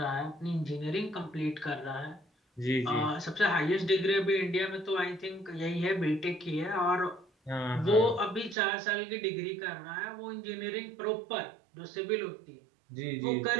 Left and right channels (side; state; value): left; drops out; at 8.6 s